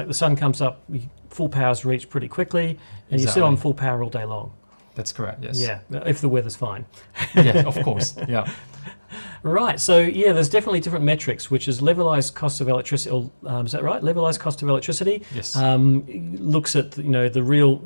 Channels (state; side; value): inverted; both; correlation -1.00